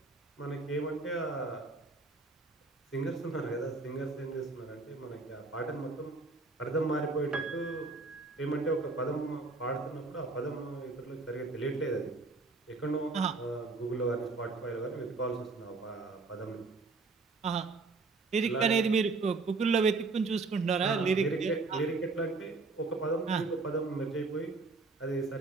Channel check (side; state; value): left; quieter; 3.8 dB